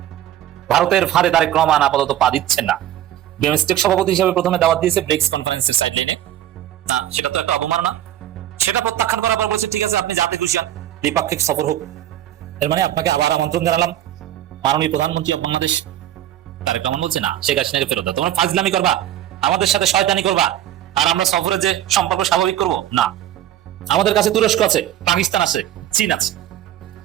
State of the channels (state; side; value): quieter; left; 12.3 dB